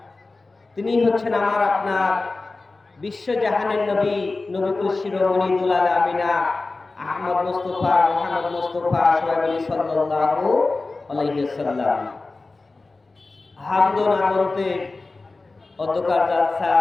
তিনি হচ্ছেন আমার আপনার বিশ্ব জাহানের নবী, নবীকুল শিরোমণি দুলাল আমিনা আহমদ মুস্তাফা মুহাম্মদ মুস্তাফা সাল্লাল্লাহু আলাইহি ওয়াসাল্লাম। হামদ ও নামতে অধ্যকার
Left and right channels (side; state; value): right; quieter; 3.5 dB